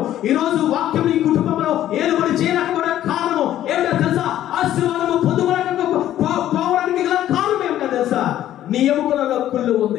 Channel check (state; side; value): quieter; right; 12.4 dB